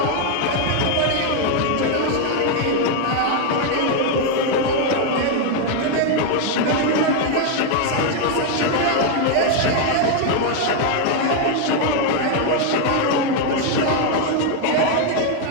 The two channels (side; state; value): both; different; correlation 0.01